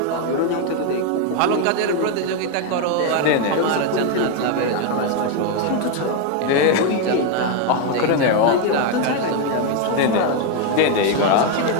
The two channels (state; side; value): different; both; correlation 0.01